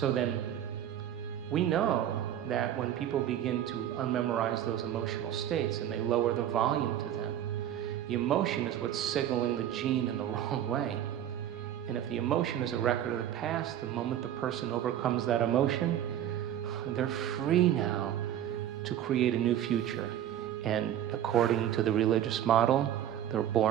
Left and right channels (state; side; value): quieter; left; 11.0 dB